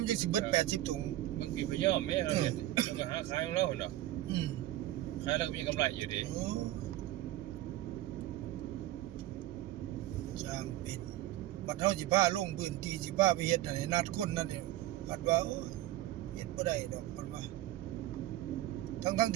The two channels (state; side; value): quieter; left; 15.1 dB